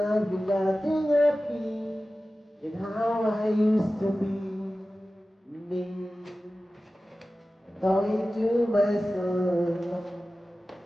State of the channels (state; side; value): normal; both; correlation 0.95